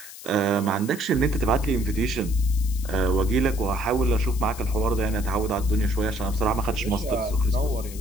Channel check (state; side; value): noise; left; hiss, 15 dB below the sound